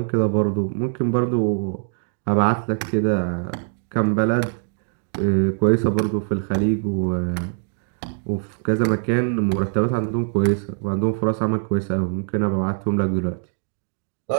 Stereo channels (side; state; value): left; silent; 61 dB below the other